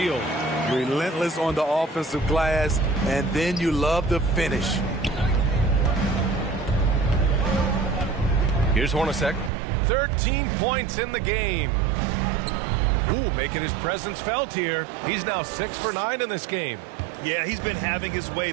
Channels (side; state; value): left; drops out; at 9.5 s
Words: Relentless on the offensive glass, and then you love the finish. Here's Hornacek. 13 points in the game. Ooh, making his presence felt here. He's now 6 for 9 in this game. Yeah, he's been having his way